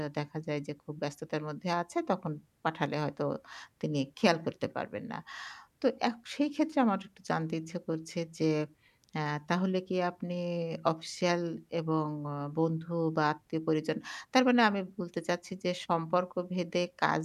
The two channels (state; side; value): identical; both; correlation 1.00